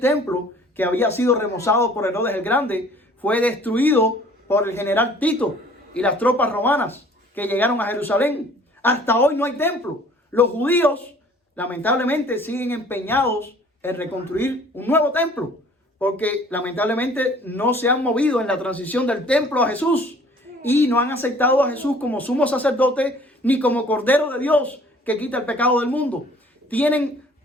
que había sido remozado por Herodes el Grande fue destruido por el general Tito y las tropas romanas que llegaron a Jerusalén. Hasta hoy no hay templo. Los judíos lamentablemente siguen empeñados en reconstruir un nuevo templo, porque lamentablemente no se han movido en la transición del templo a Jesús y no han aceptado a Jesús como sumo sacerdote ni como Cordero de Dios que quita el pecado del mundo. Tienen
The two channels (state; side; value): normal; both; correlation 0.53